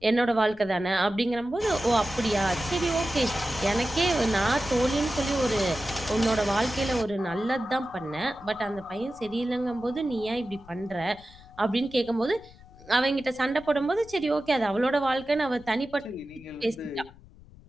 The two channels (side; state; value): left; noise; rumble, 22 dB below the sound